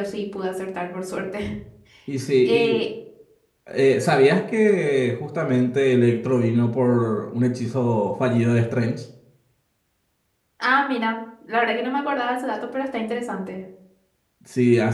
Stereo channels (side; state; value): both; identical; correlation 1.00